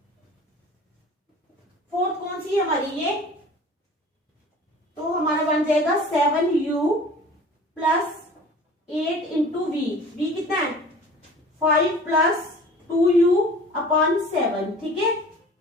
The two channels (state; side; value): normal; both; correlation 0.44